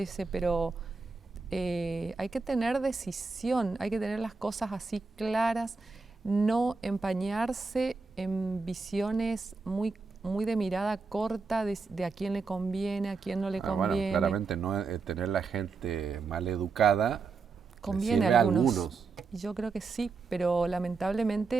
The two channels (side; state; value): left; quieter; 4.4 dB